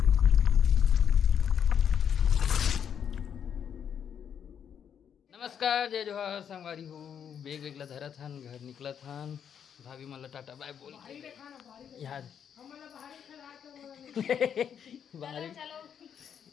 नमस्कार जय जोहार संगवारी हो. बेग वेगला धरा था घर निकला था. भाभी मला टाटा बाय बोल यार बाहरी.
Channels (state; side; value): quieter; right; 8.2 dB